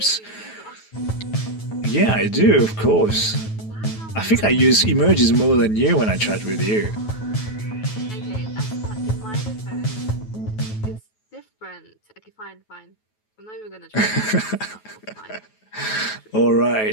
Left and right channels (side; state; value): right; late; 9.3 ms